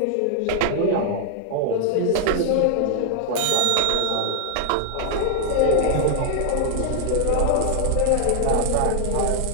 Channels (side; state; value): both; different; correlation 0.00